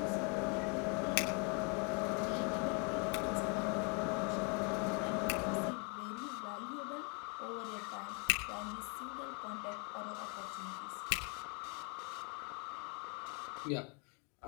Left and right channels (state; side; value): quieter; right; 35.0 dB